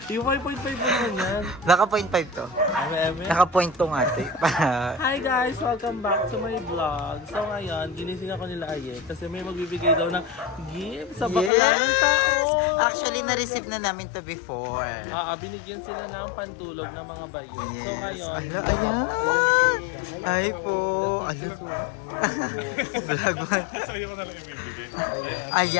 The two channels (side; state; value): right; drops out; at 11.5 s